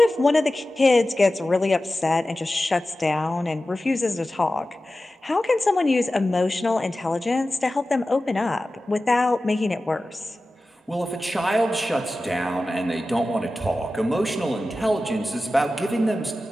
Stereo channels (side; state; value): both; normal; correlation 0.95